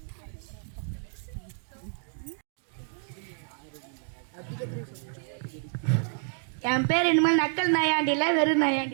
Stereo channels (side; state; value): left; silent; digital silence